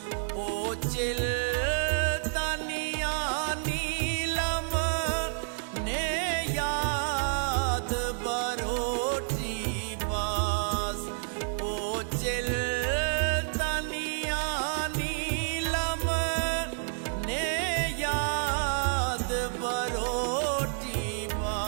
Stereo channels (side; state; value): left; silent; 58 dB below the other